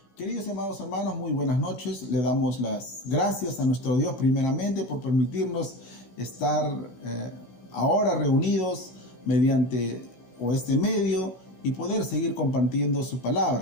Queridos y amados hermanos, muy buenas noches. Le damos las gracias a nuestro Dios primeramente por permitirnos estar ahora reunidos mediante este medio y poder seguir compartiendo su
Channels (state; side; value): late; right; 16 ms